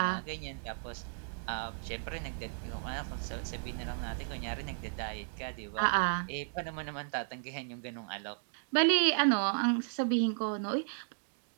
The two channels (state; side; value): silent; left; digital silence